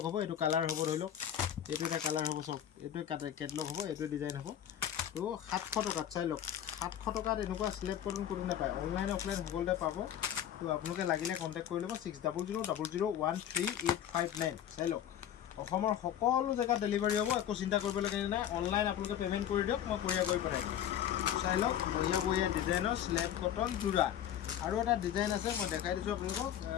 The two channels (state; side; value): quieter; right; 10.4 dB